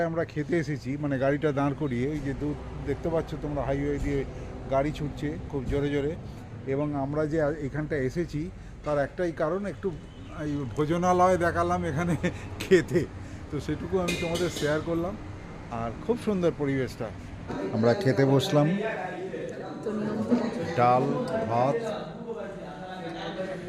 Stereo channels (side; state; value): both; identical; correlation 1.00